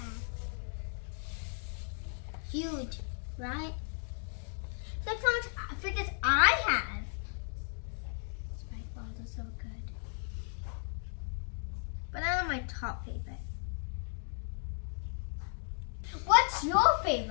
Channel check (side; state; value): right; silent; 54 dB below the other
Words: Huge, right? That's not fidgets I have. Spike balls are so good. But I'm my top favorite. What's your